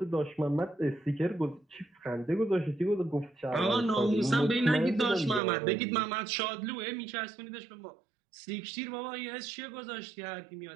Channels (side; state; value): left; drops out; at 5.4 s